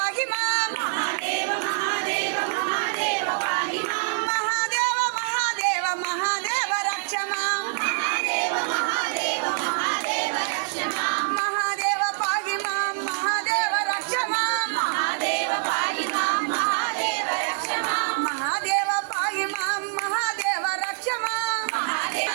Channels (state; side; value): silent; left; digital silence